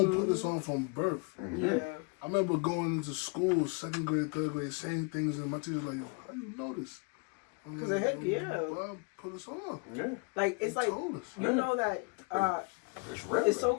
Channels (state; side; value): quieter; right; 33.6 dB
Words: put this on from birth. Yeah. I remember going into school, 2nd grade, 3rd grade, saying things, and my teacher's like, "Yo, how do you know this?" Because it hit, Bob put us on. Yeah. Like, it's like, you know that it's so